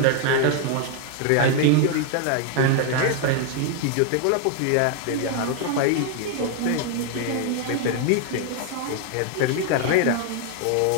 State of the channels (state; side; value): different; both; correlation 0.01